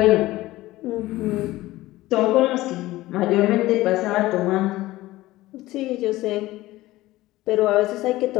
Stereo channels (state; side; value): quieter; right; 17.5 dB